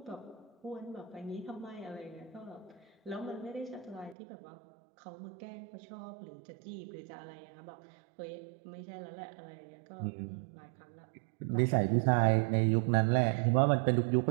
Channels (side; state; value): left; drops out; at 4.2 s